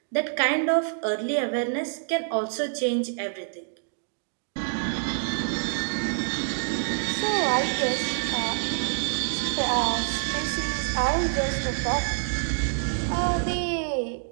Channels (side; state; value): left; silent; digital silence